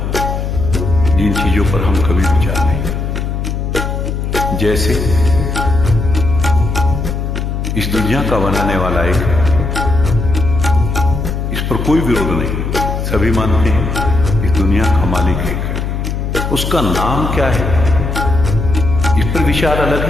जिन चीजों पर हम कभी विचार नहीं। जैसे इस दुनिया का बनाने वाला एक, इस पर कोई विरोध नहीं, सभी मानते हैं इस दुनिया का मालिक एक है। उसका नाम क्या है इस पर विचार अलग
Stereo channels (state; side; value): noise; left; hum, 3 dB below the sound